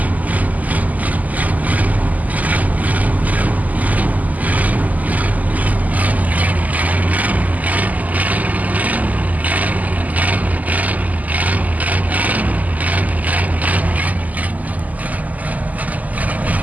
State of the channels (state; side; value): late; left; 0.078 ms